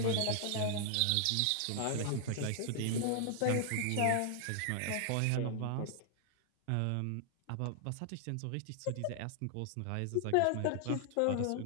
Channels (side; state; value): both; different; correlation 0.00